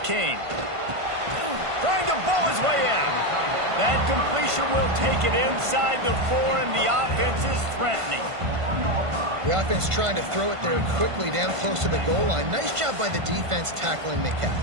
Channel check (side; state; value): left; late; 1.5 ms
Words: Trying to bowl his way in. That completion will take it inside the 4, and the offense is threatening. The offense trying to throw it there quickly down close to the goal line. Nice job by the defense tackling the